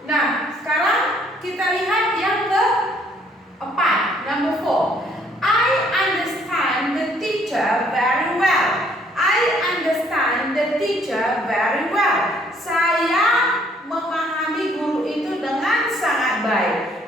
Nah, sekarang kita lihat yang keempat, number 4. I understand the teacher very well. I understand the teacher very well. Saya memahami guru itu dengan sangat baik.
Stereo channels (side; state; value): both; normal; correlation 0.64